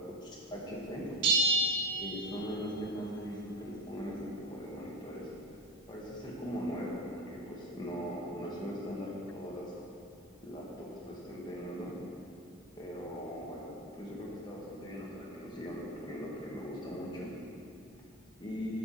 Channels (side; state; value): both; normal; correlation 0.25